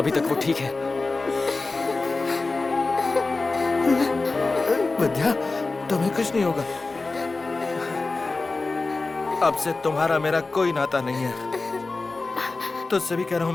तक वो ठीक है। विद्या, तुम्हें कुछ नहीं होगा। अब से तुम्हारा मेरा कोई नाता नहीं है। तुझसे भी कह रहा हूं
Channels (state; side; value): quieter; right; 3.6 dB